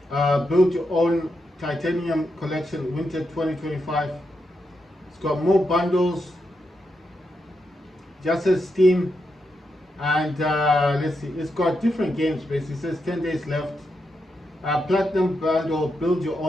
Build Your Own Titanium Collection Winter 2025. It's got more bundles, just as Steam, and let's see, it's got different games basically. It says 10 days left. Platinum Bundle, Build Your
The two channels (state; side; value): normal; both; correlation 0.84